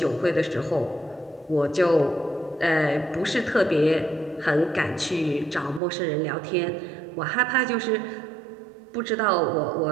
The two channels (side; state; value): left; drops out; at 5.8 s